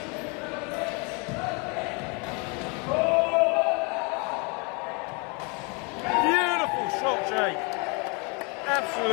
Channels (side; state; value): right; quieter; 32.3 dB